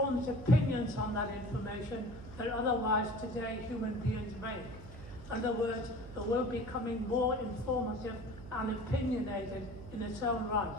opinions on that information that otherwise today human beings make. In other words, it will be becoming more informative and opinionated in its own right.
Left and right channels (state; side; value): noise; right; hum, 14 dB below the sound